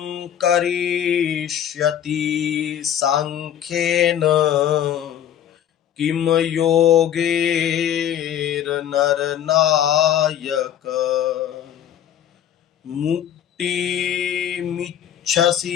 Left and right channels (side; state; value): right; quieter; 10.2 dB